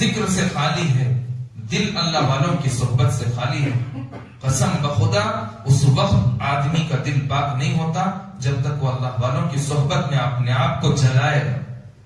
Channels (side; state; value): both; identical; correlation 1.00